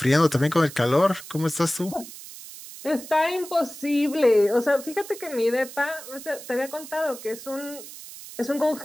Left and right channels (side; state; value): right; noise; hiss, 14 dB below the sound